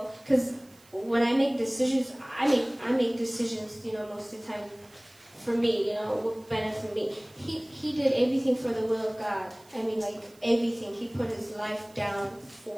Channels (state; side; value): noise; right; hiss, 28 dB below the sound